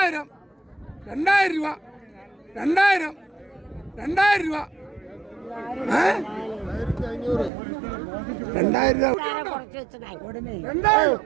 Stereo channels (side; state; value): left; drops out; at 7.5 s